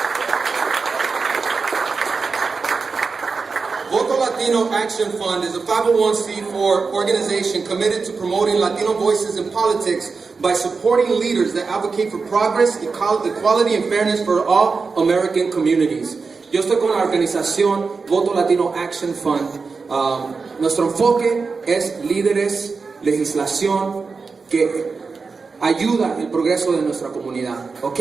Latino Action Fund is a 501c4 organization committed to promoting Latino voices in politics by supporting leaders that advocate for progress, equality, and fairness for all American communities. Yo estoy con la organización Voto Latino Action Fund. Nuestro enfoque es líderes, legislación que ayuda el progreso de nuestra comunidad.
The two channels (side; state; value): left; quieter; 4.6 dB